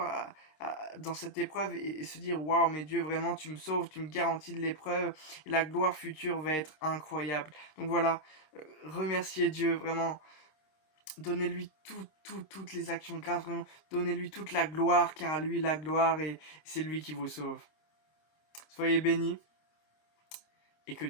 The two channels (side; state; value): right; late; 26 ms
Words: dans cette épreuve, et se dire waouh, mais Dieu, vraiment tu me sauves, tu me garantis de l'épreuve, et la gloire future va être incroyable. Donc voilà, remerciez Dieu, vraiment. Donnez-lui toutes les actions de grâce, vraiment. Donnez-lui toute la gloire, car à lui la gloire, et c'est lui qui vous sauve. Soyez bénis, et que